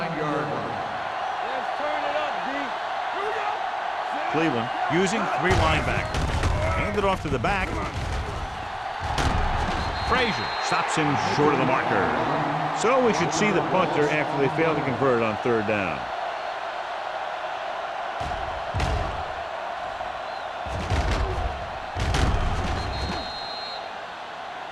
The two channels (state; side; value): identical; both; correlation 1.00